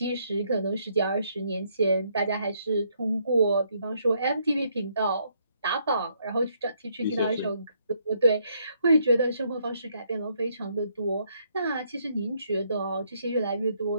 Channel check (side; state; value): both; inverted; correlation -0.72